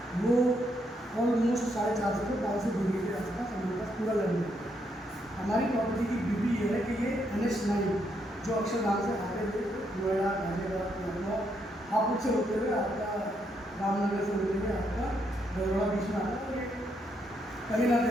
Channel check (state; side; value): normal; both; correlation 0.76